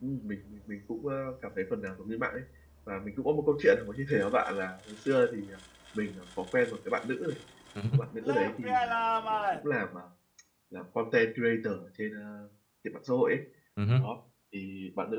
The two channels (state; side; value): identical; both; correlation 1.00